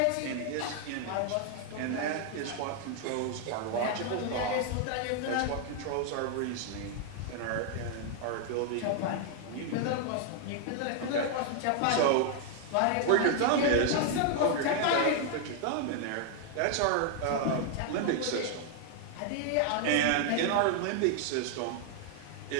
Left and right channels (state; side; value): different; both; correlation 0.00